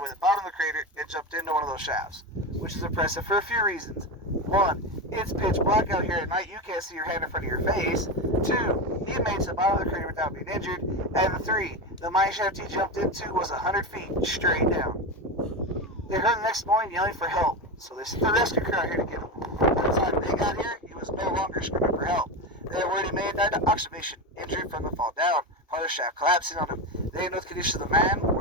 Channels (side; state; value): both; normal; correlation 0.18